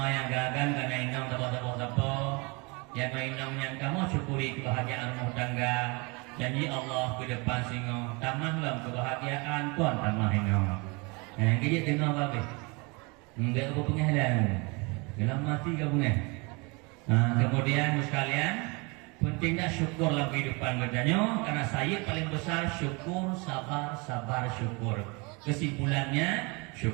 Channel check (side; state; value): left; quieter; 28.8 dB